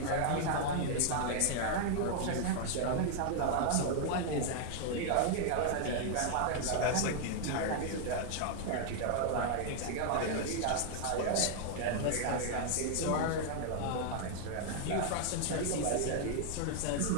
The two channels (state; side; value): different; both; correlation 0.00